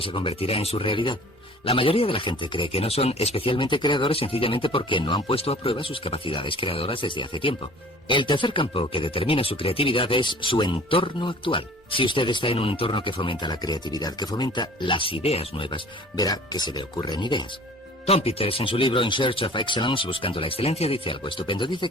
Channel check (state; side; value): normal; both; correlation 0.48